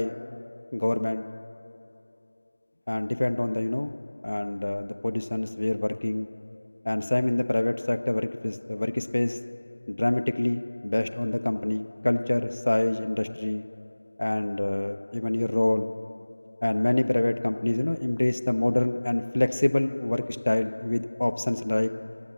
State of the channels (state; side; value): inverted; both; correlation -1.00